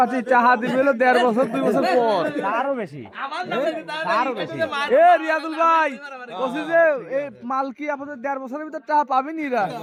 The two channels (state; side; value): identical; both; correlation 1.00